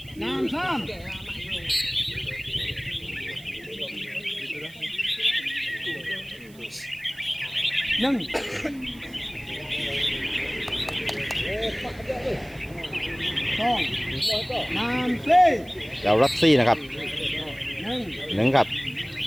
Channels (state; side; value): noise; right; hiss, 24 dB below the sound